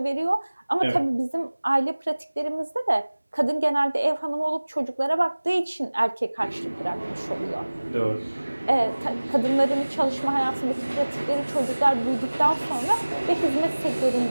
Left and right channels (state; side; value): inverted; both; correlation -1.00